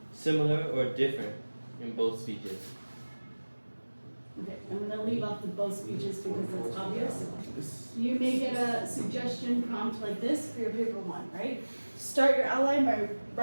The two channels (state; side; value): inverted; both; correlation -1.00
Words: similar or different in both speeches? Okay, I'm going to leave off the both speeches because it's obvious. You may get a suggestion prompt like this for your paper 1, right? Start your outline by